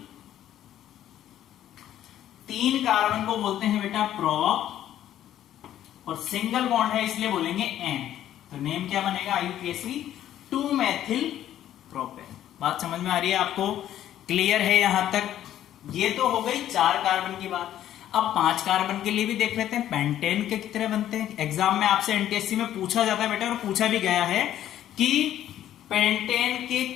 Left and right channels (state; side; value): quieter; right; 11.8 dB